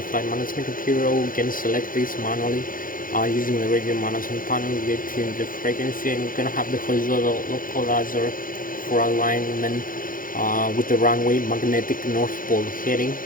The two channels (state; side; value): late; right; 0.40 ms